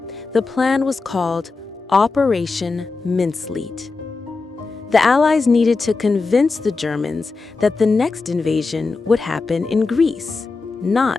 The plan was called Operation Mincemeat. The Allies needed to convince the Germans that the next invasion would happen in Greece,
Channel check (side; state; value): right; quieter; 4.1 dB